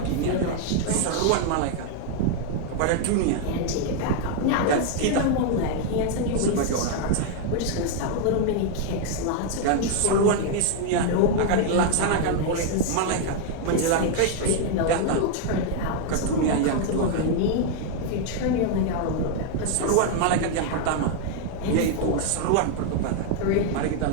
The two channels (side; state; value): both; different; correlation 0.00